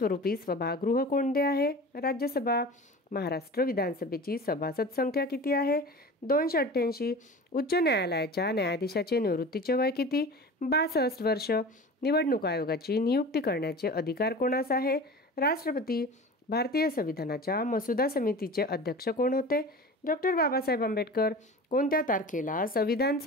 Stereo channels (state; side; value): normal; both; correlation 0.35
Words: सभागृह कोणते आहे? राज्यसभा. महाराष्ट्र विधानसभेची सभासद संख्या किती आहे? 288. उच्च न्यायालयाच्या न्यायाधीशाचे निवृत्तीचे वय किती? 62 वर्ष. निवडणूक आयोगाची नियुक्ती करण्याचे अधिकार कोणास आहे? राष्ट्रपती. भारतीय संविधानाच्या मसुदा समितीचे अध्यक्ष कोण होते? डॉक्टर बाबासाहेब आंबेडकर. कोणत्या तारखेला संविधान